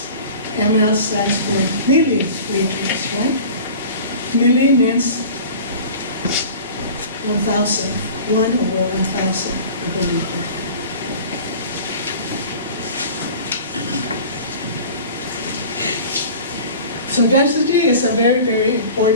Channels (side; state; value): both; inverted; correlation -0.40